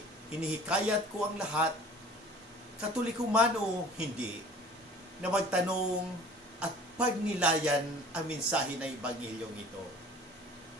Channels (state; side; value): normal; both; correlation 0.46